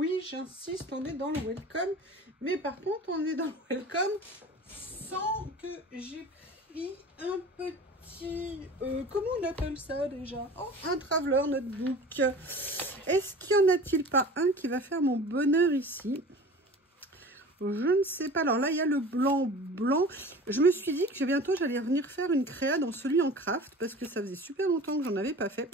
j'insiste, on est dans le welcome. Mais par contre, on est dans le welcome sans que j'ai pris un petit... comment on appelle ça déjà? Oh, un traveler notebook. Est-ce qu'il n'y en a-t-il pas un qui va faire mon bonheur ici? Je ne sais pas. Alors là, il y a le blanc. Je me suis dit que bientôt, j'allais venir faire une créa dans celui en craft parce que ça faisait super longtemps que j'en avais pas fait.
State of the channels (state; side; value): normal; both; correlation 0.39